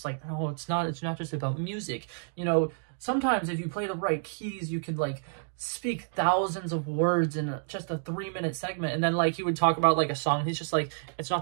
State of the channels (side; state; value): left; silent; digital silence